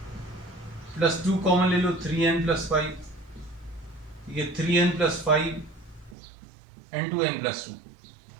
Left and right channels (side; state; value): left; drops out; at 6.2 s